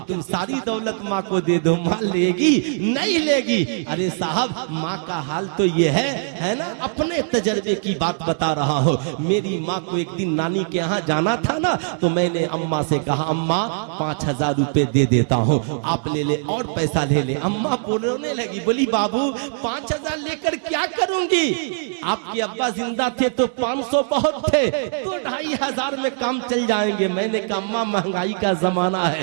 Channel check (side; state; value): left; silent; 65 dB below the other